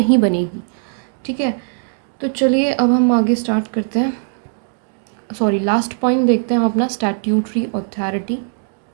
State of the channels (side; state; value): left; silent; digital silence